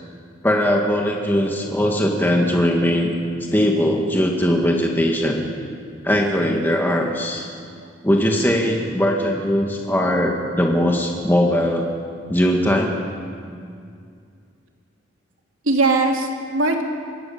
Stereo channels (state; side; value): normal; both; correlation 0.68